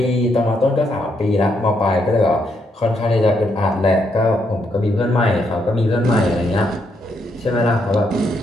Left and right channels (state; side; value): normal; both; correlation 0.77